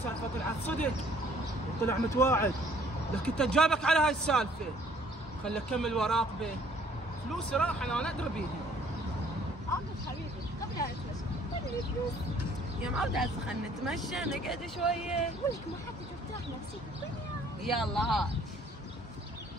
طلعت صدق وطلع متواعد، لكن انت جابك على هاي السالفه. خلي اكمل وراقبه. فلوسي راح انا ادري بيها. عاطف حبيبي قبل لا نتمشى خلي فلوس. يا معودة هسه خلنا نتمشى نقعد شوية. ولك ما حتى ترتاح نفسيك الدنيا. يلا هات.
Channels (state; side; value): normal; both; correlation 0.59